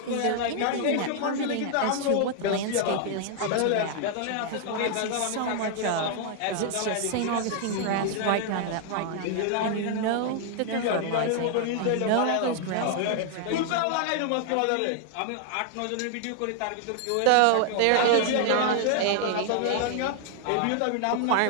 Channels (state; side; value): different; both; correlation 0.00